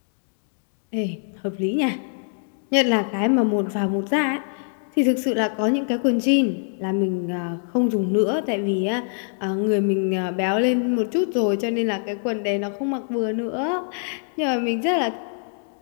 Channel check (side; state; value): right; silent; 63 dB below the other